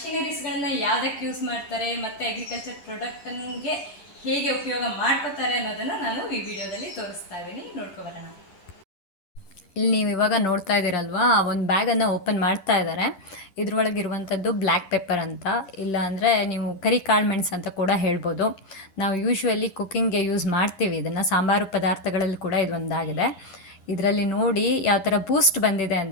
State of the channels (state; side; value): late; right; 11 ms